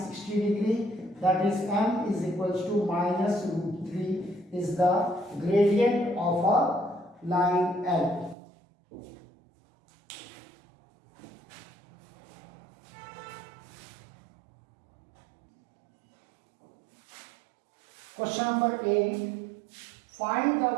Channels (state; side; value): drops out; left; at 8.3 s